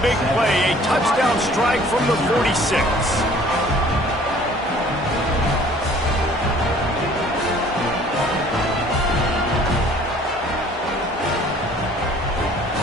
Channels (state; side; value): normal; both; correlation 0.53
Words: big play, a touchdown strike from the 46.